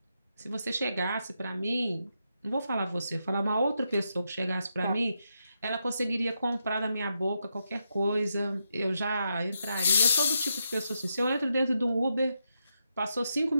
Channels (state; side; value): inverted; both; correlation -0.83